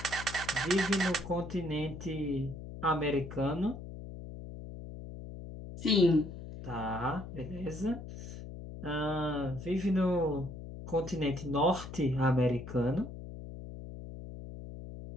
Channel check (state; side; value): noise; left; hum, 11 dB below the sound